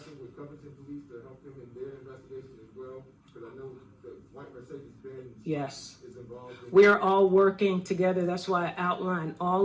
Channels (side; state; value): both; identical; correlation 1.00